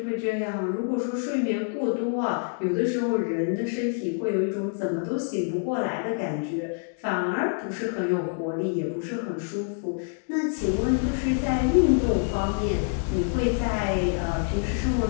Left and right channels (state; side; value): silent; right; 61 dB below the other